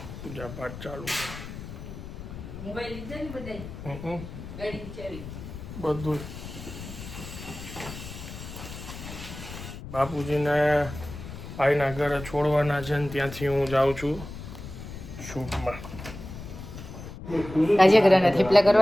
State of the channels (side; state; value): left; noise; rumble, 11 dB below the sound